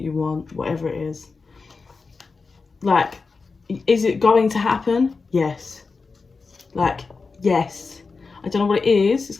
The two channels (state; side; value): quieter; right; 4.4 dB